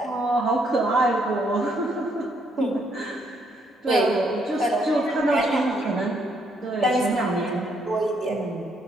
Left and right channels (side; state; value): both; normal; correlation 0.72